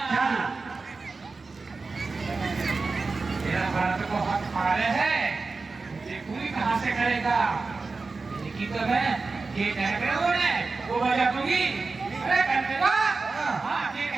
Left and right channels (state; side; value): quieter; left; 4.0 dB